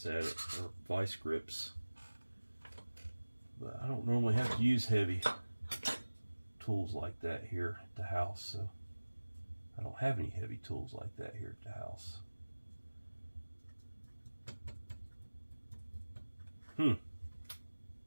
at it, or vice grips. But I don't normally have to use heavy tools like that here at the house, so I don't have any heavy tools like that here at the house. You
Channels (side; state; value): both; inverted; correlation -1.00